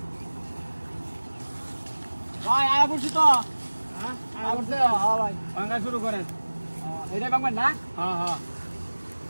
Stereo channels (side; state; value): both; inverted; correlation -1.00